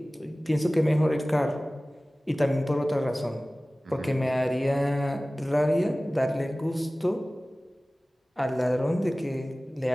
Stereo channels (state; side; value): normal; both; correlation 0.98